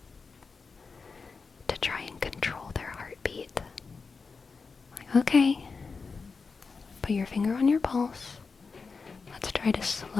to try and control their heartbeat. Like, okay, put your finger on your pulse. Let's try to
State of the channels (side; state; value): right; quieter; 4.7 dB